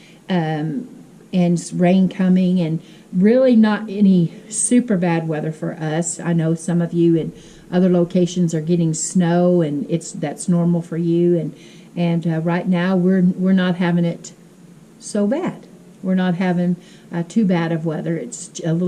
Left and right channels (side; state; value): both; identical; correlation 1.00